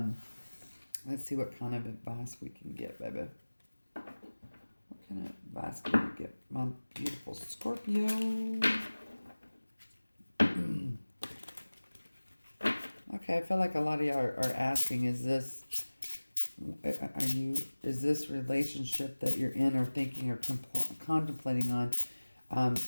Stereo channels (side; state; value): both; inverted; correlation -1.00